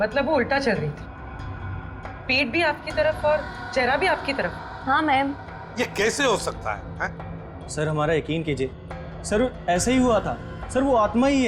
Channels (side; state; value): both; identical; correlation 1.00